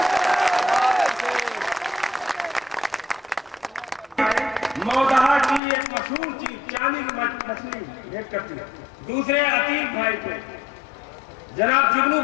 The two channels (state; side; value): drops out; right; at 5.6 s